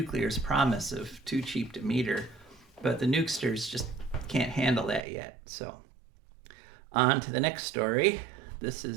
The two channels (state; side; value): drops out; left; at 5.1 s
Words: promise of too cheap to meter, but the nukesters just can't handle that yet. So on to the next story. This